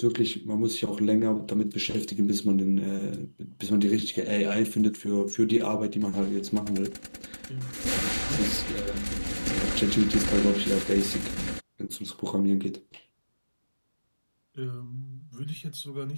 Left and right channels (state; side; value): inverted; both; correlation -1.00